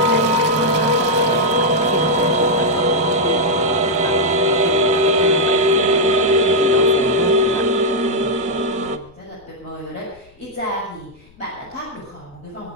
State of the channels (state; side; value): noise; left; rumble, 29 dB below the sound